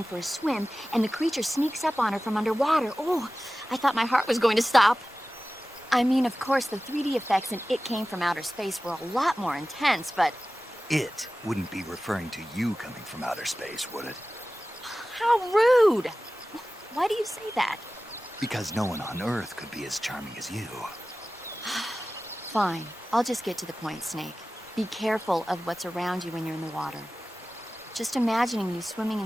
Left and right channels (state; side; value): normal; both; correlation 0.96